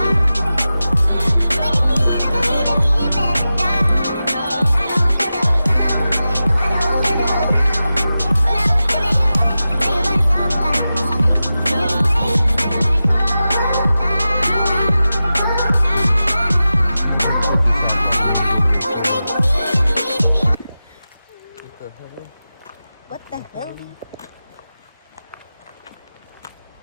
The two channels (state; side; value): inverted; both; correlation -0.93